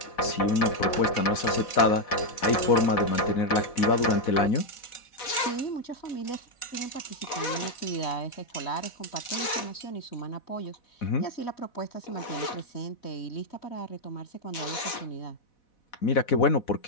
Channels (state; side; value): late; right; 4.1 ms